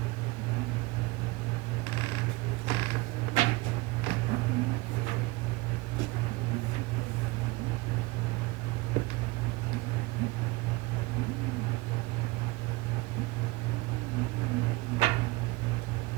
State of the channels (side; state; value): left; quieter; 21.7 dB